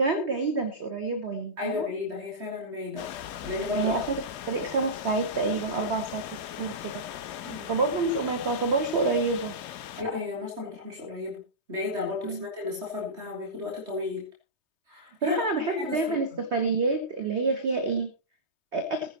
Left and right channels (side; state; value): left; late; 3.2 ms